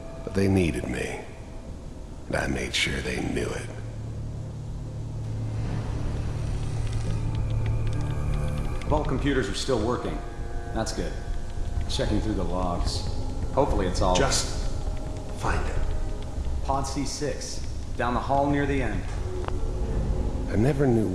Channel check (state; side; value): identical; both; correlation 1.00